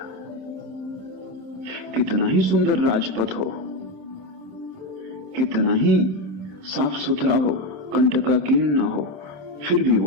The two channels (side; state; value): left; late; 27 ms